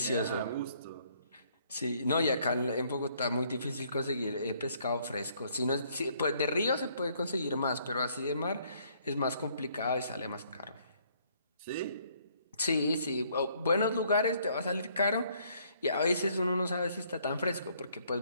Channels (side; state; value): both; inverted; correlation -0.66